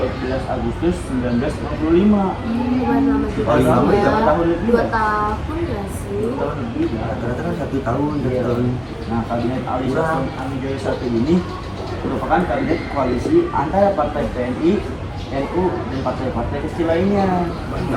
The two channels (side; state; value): both; identical; correlation 1.00